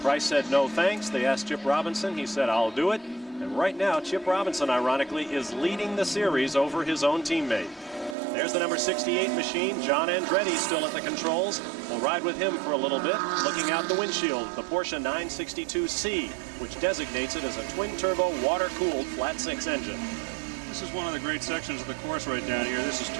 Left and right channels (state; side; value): drops out; left; at 8.2 s